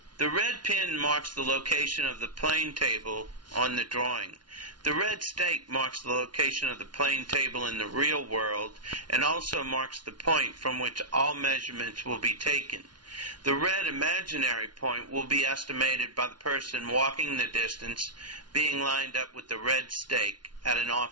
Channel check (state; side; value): late; left; 0.70 ms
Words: the red pin marks the location of the plane table on the drawing. The red stake marks the location of the plane table in the real world and also marks the point from which all measurements will be taken. The red imaginary point will be estimated by the person walking the distance being lined up with the red stake at an